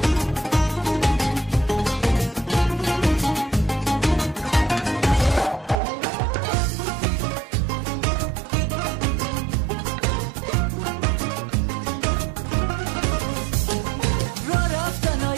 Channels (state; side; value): drops out; left; at 5.8 s